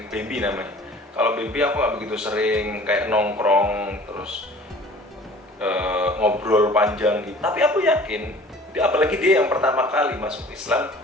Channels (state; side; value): normal; both; correlation 0.47